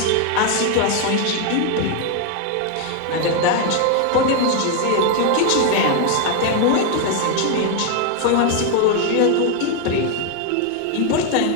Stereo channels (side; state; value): both; different; correlation 0.01